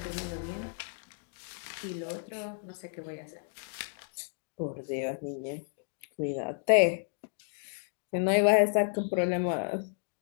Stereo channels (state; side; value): silent; right; digital silence